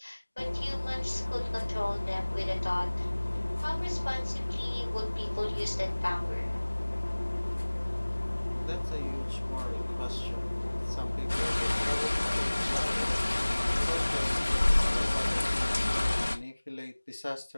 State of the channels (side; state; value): both; inverted; correlation -1.00